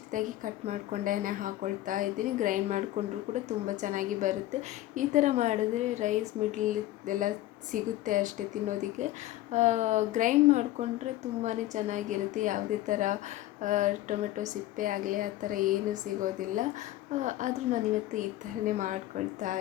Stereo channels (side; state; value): right; quieter; 15.3 dB